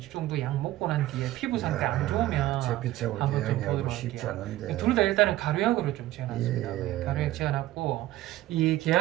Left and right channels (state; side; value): quieter; left; 15.6 dB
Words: 정도 약 먹고 난 뒤에 피부 상태 안 좋으면 잿빛하고 한번 좀 개양이하고 보도록 쉽지 할게요. 않은데. 둘 다 일단은 가루약으로 좀 지어놨습니다. 예. 가루약 지어놨고 이